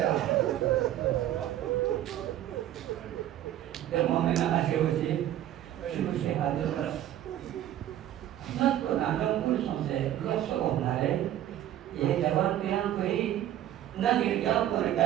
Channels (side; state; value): left; quieter; 12.3 dB